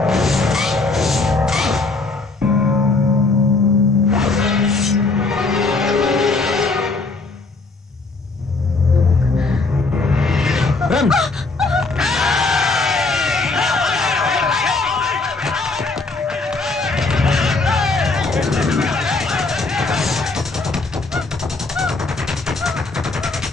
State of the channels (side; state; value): right; quieter; 3.6 dB